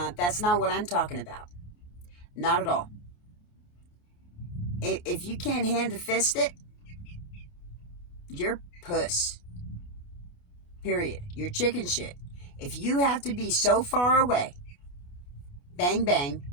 That's not what I'm talking about. Not at all. If you can't hand to fist it, you're puss. Period. You're chicken shit. If you have to be so far away, bang bang,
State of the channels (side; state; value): right; late; 28 ms